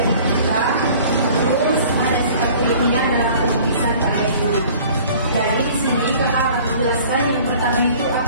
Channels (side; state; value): both; inverted; correlation -0.49